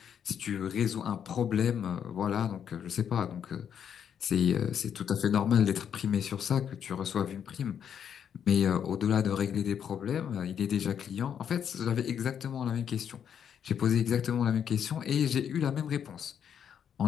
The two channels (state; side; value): quieter; right; 8.4 dB